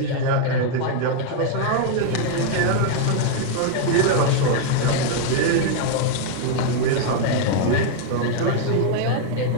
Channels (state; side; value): different; both; correlation 0.00